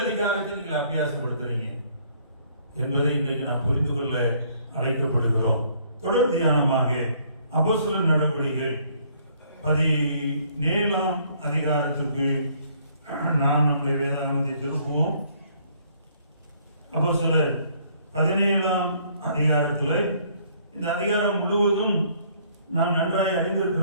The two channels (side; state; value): both; inverted; correlation -0.63